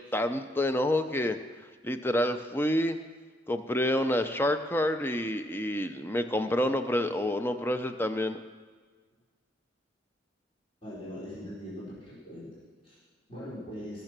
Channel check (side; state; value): both; normal; correlation 0.73